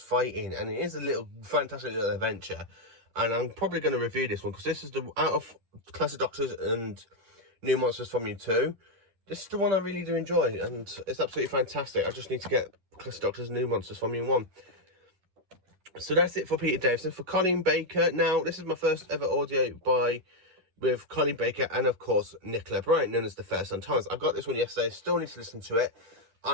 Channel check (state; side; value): late; left; 10 ms